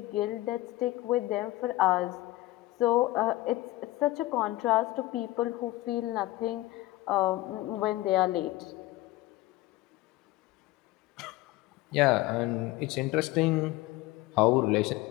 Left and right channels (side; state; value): right; quieter; 18.0 dB